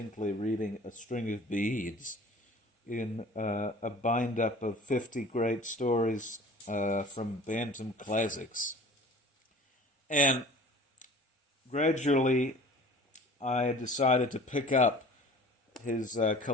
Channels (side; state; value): both; normal; correlation 0.45